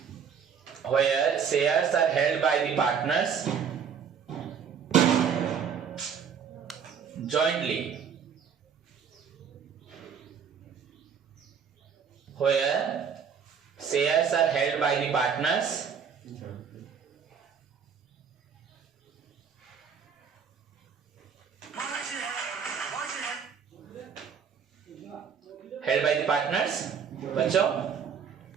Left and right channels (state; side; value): quieter; left; 7.0 dB